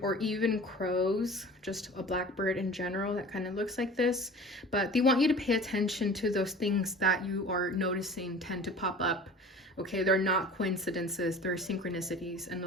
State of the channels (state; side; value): normal; both; correlation 0.41